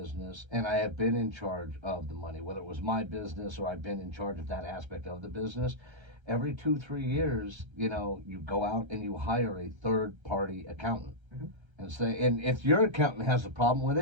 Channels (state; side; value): late; left; 1.3 ms